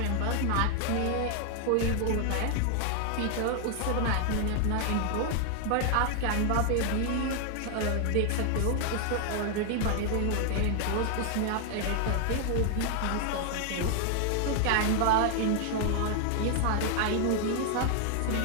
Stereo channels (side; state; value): both; different; correlation 0.00